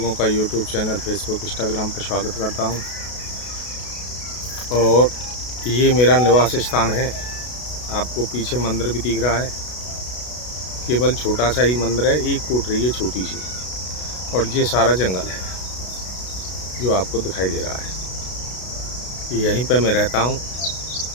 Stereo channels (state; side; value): late; right; 32 ms